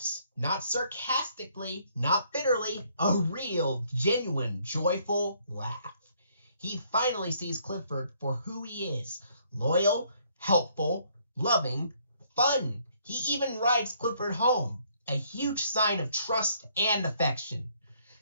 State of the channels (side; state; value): both; inverted; correlation -0.66